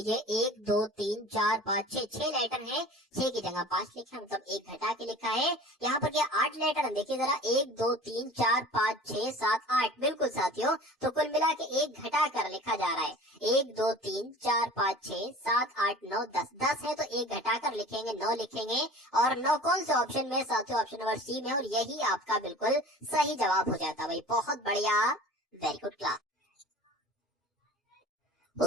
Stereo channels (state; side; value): normal; both; correlation 0.42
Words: 1 2 3 4 5 6 लेटर है। 6 की जगह 5 लिखा, मतलब 1 घटा के लिखा है। यहाँ पर क्या 8 लेटर, देखिए जरा, 1 2 3 4 5 6 7 8, बिल्कुल साथियों। तो कुल मिला के 1 घटा कर लिखा जा रहा है। 1 2 3 4 5 6 7 8 9 10, 10 है तो 1 घटाकर लिखेंगे, 9 लिखेंगे। और 9 कौन से ऑप्शन में, साथियों ऑप्शन नंबर सी में, और यही आपका बिल्कुल सही जवाब हो जाता भाई। बहुत बढ़िया, वेरी गुड क्लास।